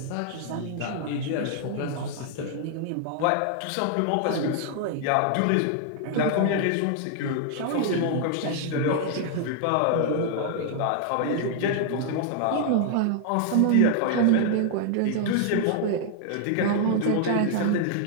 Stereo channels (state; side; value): different; both; correlation 0.00